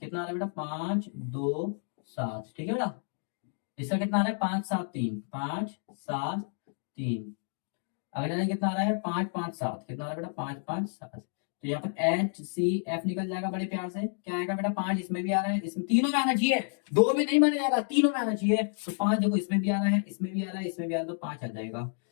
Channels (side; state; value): right; silent; 58 dB below the other